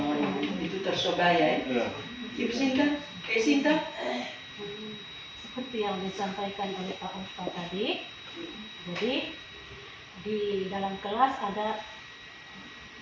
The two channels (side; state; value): both; identical; correlation 1.00